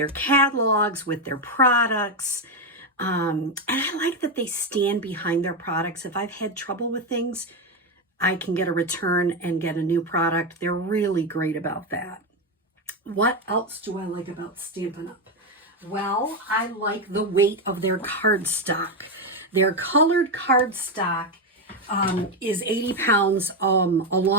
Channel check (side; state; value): both; normal; correlation 0.09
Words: catalogs, with their products. And I like that they stand behind their products. If I've had trouble with things, I can get a return and get a new product. They're really great about that. What else do I like about Stampin' Up? Well, I like the weight of their cardstock. Their colored cardstock is 80 pounds